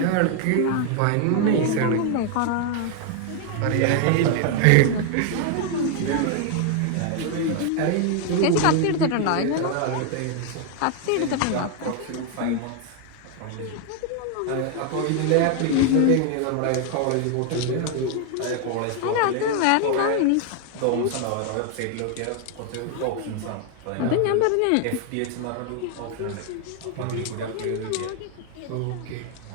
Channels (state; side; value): different; both; correlation 0.00